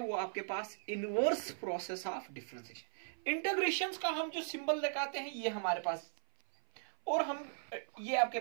आपके पास inverse process of differentiation. Integrations का हम जो सिंबल लगाते हैं ये हमारे पास, और हम ये आपके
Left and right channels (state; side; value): silent; left; 53 dB below the other